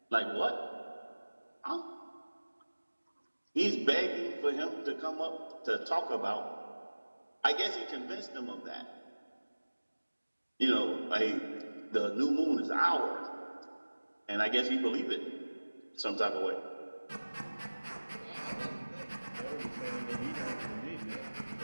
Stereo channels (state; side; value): inverted; both; correlation -1.00